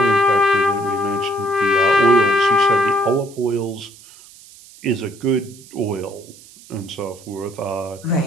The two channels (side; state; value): right; noise; hiss, 22 dB below the sound